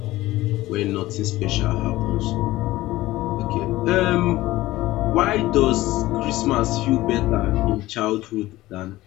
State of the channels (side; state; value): right; quieter; 17.3 dB